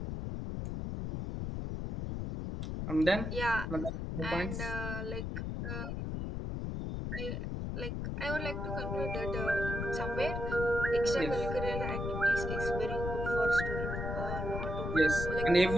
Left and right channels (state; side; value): noise; left; rumble, 3 dB below the sound